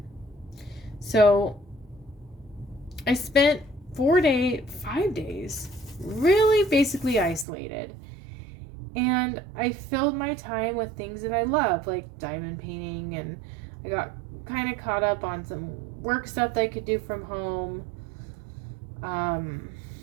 so I spent 5 days really basically isolated. And I filled my time with things that I love, like diamond painting, and I got kind of caught up on some work stuff that I could do from home. I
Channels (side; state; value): left; drops out; at 7.5 s